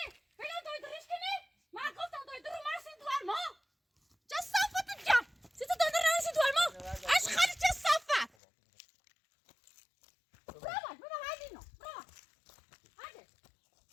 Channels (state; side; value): drops out; right; at 8.3 s